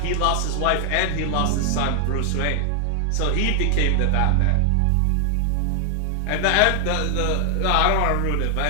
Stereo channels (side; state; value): both; different; correlation 0.00